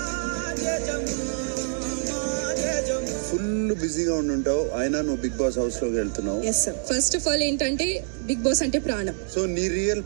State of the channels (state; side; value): silent; left; digital silence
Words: ఫుల్ బిజీగా ఉండుంటావు, అయినా నువ్వు బిగ్ బాస్ హౌస్ లోకి వెళ్తున్నావు. Yes sir. First of all ఏంటంటే బిగ్ బాస్ అంటే ప్రాణం. సో నీ రియల్